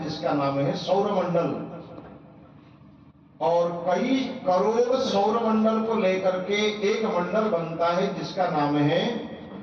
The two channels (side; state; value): both; identical; correlation 1.00